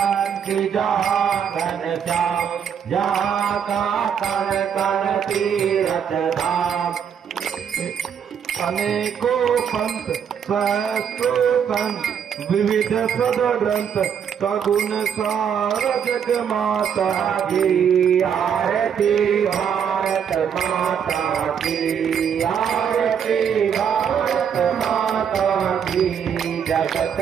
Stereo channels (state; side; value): quieter; left; 7.9 dB